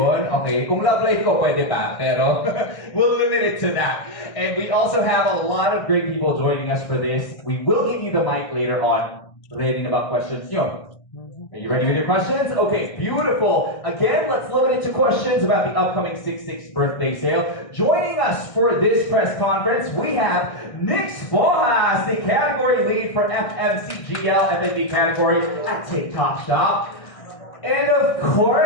Okay, kung love life ko, pwede pa. Pero, we'll limit it to that. And we also have a lot of great people joining us for this. We will give you the mic later on, relating about questions. Are you ready with your questions? Okay, beautiful. Again, let's limit it to questions about the upcoming 6-6 birthday sale. Joining us for this press conference, we have Nix Bojas, the category lead for FMCGL FNB category at TikTok Shop. And of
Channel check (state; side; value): late; right; 1.6 ms